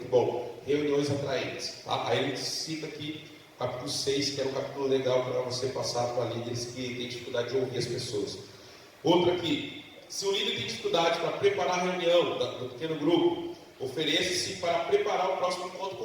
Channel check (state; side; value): identical; both; correlation 1.00